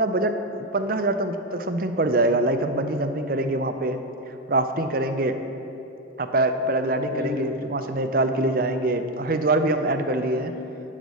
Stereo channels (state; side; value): normal; both; correlation 0.09